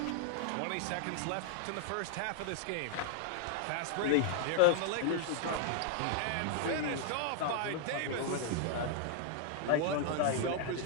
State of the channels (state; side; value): different; both; correlation -0.01